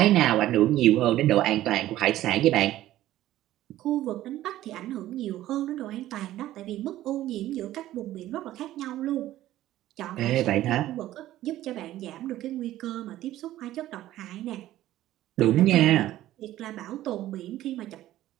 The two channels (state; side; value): quieter; left; 14.3 dB